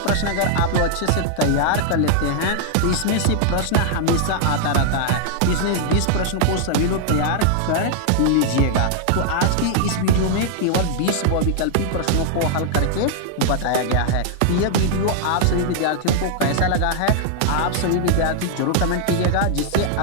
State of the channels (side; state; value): both; different; correlation -0.01